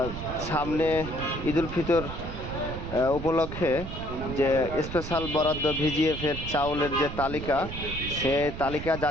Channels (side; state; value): right; noise; rumble, 8 dB below the sound